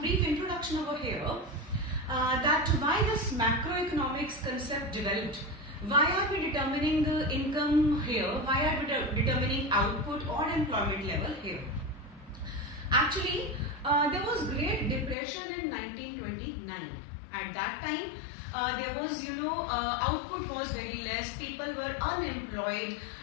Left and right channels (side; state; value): right; drops out; at 15.2 s